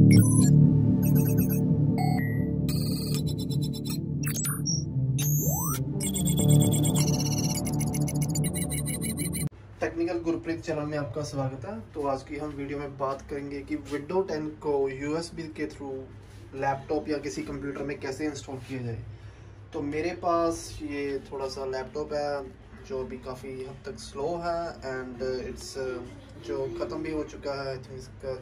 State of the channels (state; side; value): identical; both; correlation 1.00